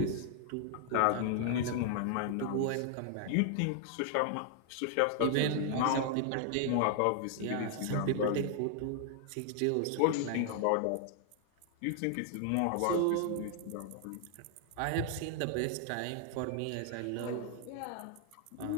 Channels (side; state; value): both; different; correlation 0.00